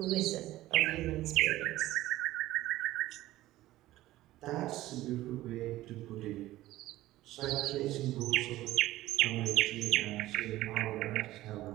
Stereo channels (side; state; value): left; quieter; 16.0 dB